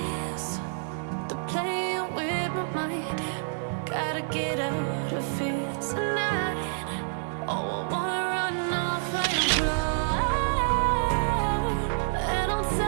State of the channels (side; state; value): left; silent; digital silence